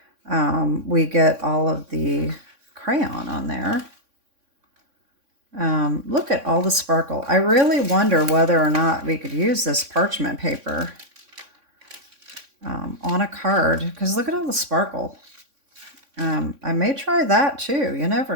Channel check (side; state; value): left; late; 3.6 ms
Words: we get all of the crayon on there. Look at all the sparkle. I really wonder whether or not we could use this parchment paper on a card, because look at all the sparkle. I may try that too. You never